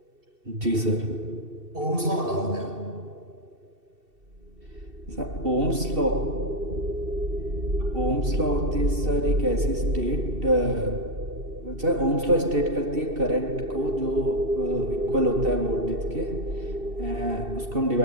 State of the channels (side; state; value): left; late; 2.7 ms